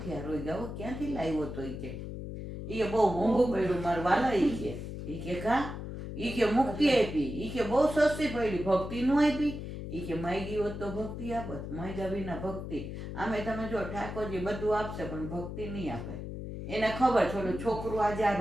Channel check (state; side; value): noise; left; hum, 7 dB below the sound